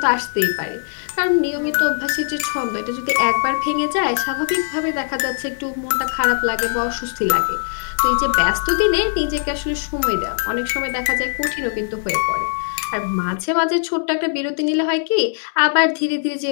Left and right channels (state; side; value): silent; right; digital silence